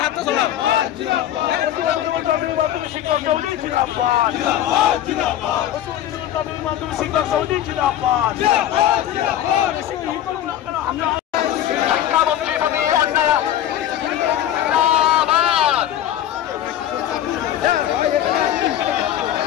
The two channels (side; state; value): right; quieter; 11.7 dB